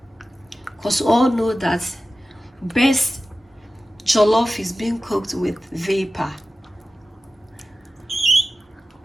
Because we all know that best jollof is being cooked with vapor.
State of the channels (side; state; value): both; normal; correlation 0.95